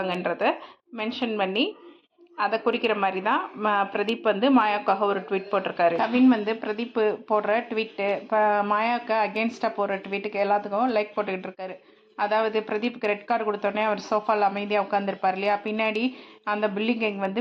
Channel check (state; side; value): identical; both; correlation 1.00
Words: மென்ஷன் பண்ணி அதை குறிக்கிற மாதிரி தான் பிரதீப் மாயாவுக்காக ஒரு ட்வீட் போட்டிருக்காரு. கவின் பிரதீப் போடுற ட்வீட்டு, இப்போ மாயாவுக்கு அகேன்ஸ்டாக போடுற ட்வீட்டுக்கு எல்லாத்துக்கும் லைக் போட்டுக்கிட்டு இருக்காரு. அதாவது பிரதீப்புக்கு ரெட் கார்டு கொடுத்தோடனே அவர் சோஃபாவில் அமைதியாக உட்காந்துருப்பார் இல்லையா, பின்னாடி அந்த பில்டிங் கேங்